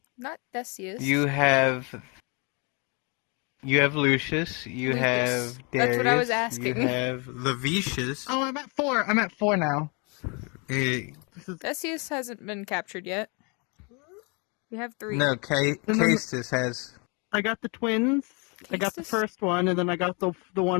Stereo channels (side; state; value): right; quieter; 32.4 dB